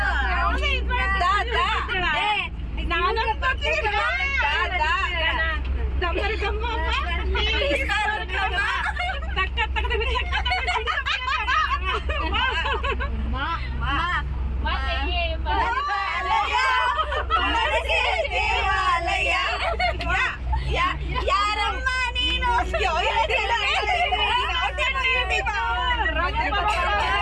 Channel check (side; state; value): both; identical; correlation 1.00